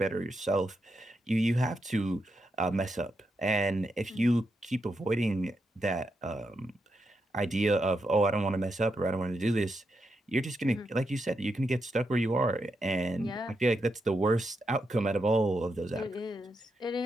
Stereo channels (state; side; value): normal; both; correlation 0.84